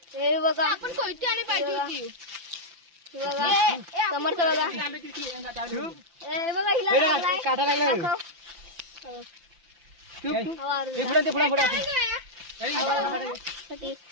हे बघा आपण कोयती आणि पाहिजे होती हे बघा समर्थ बघा आंब्याची पिशवी हे बघा हिला काटा लागला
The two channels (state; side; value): late; left; 5.9 ms